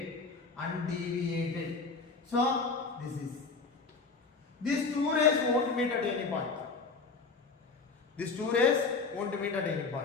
So this is. These two rays won't meet at any point.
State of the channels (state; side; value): quieter; right; 4.4 dB